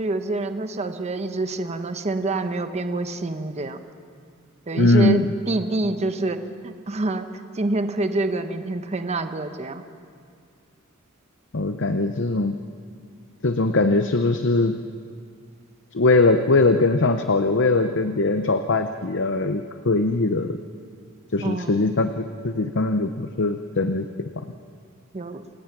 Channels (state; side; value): normal; both; correlation 0.22